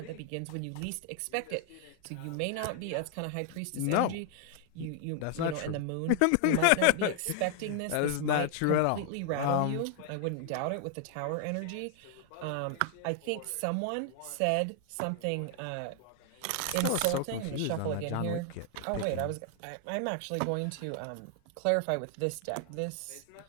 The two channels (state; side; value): different; both; correlation 0.00